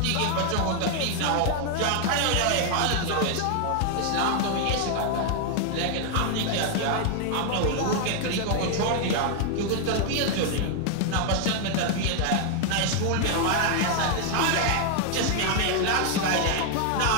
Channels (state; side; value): different; both; correlation 0.00